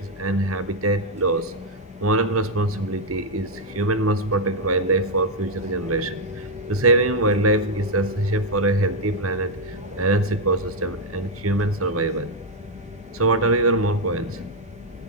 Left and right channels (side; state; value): both; normal; correlation 0.01